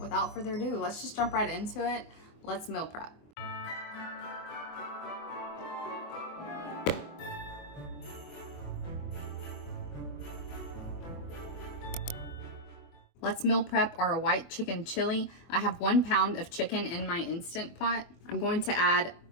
further ado, let's just jump right into it. Let's meal prep. Let's meal prep our white chicken chili. I have 1 pound of chicken in my Instant Pot. I'm going to add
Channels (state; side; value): late; right; 24 ms